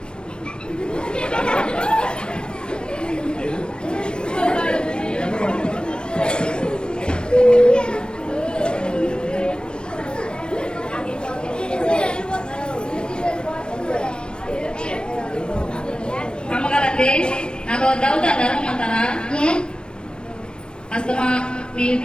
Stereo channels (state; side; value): late; right; 0.053 ms